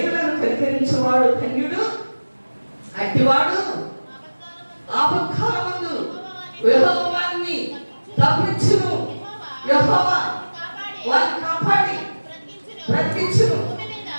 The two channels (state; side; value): inverted; both; correlation -1.00